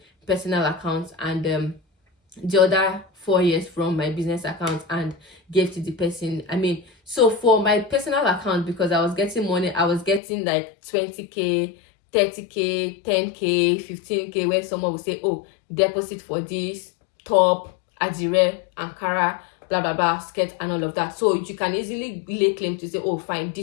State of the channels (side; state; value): right; drops out; at 10.2 s